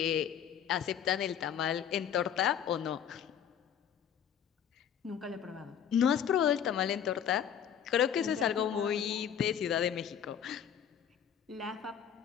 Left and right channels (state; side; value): quieter; right; 8.8 dB